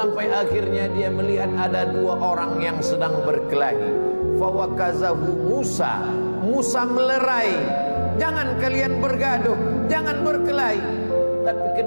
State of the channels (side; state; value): both; inverted; correlation -1.00